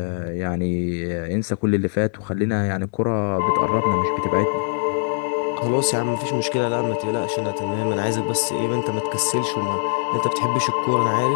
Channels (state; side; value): silent; right; 61 dB below the other